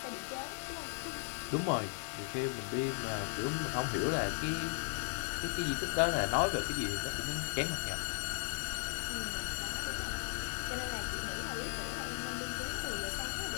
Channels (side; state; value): right; silent; 53 dB below the other